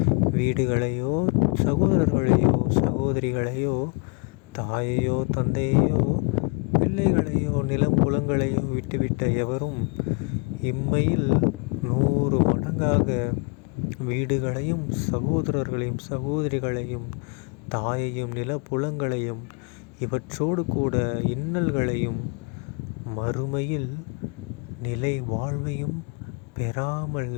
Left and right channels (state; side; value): quieter; right; 33.5 dB